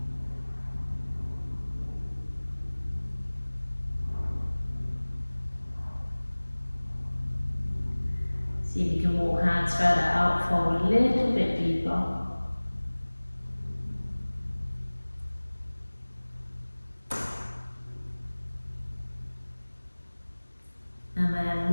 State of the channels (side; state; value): both; inverted; correlation -1.00